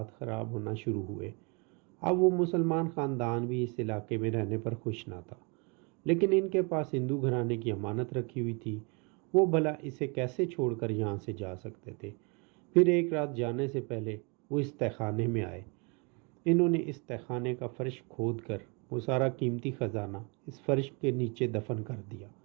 خراب ہونا شروع ہوئے۔ اب وہ مسلمان خاندان بھی اس علاقے میں رہنے پر خوش نہ تھا، لیکن ان کے پاس ہندو گھرانے کی امانت رکھی ہوئی تھی، وہ بھلا اسے کیسے چھوڑ کر یہاں سے جا سکتے تھے۔ پھر ایک رات جانے سے پہلے وہ اس تہخانے میں آئے۔ انہوں نے اس تہخانے کا فرش کھود کر وہ سارا قیمتی خزانہ اس فرش کے نیچے دفن کر دیا۔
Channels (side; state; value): left; quieter; 32.3 dB